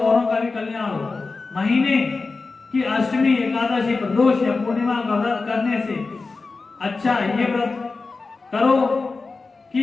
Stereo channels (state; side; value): quieter; right; 4.0 dB